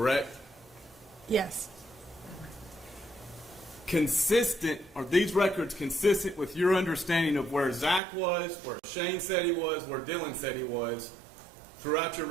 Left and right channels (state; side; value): drops out; left; at 8.0 s